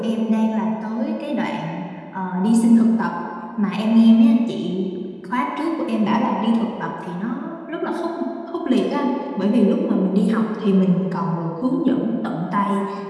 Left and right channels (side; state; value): both; identical; correlation 1.00